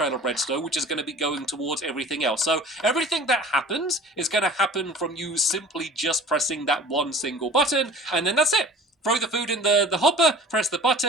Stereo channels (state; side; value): normal; both; correlation 0.44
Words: of redstone, which is going to be going towards everything else. So everything that happens is going to happen from you simply just pressing that one single button, and then that's it. Throw the food in the hopper, press the